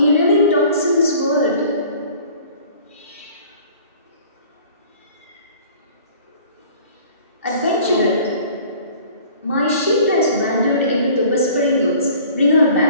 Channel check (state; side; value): inverted; both; correlation -0.49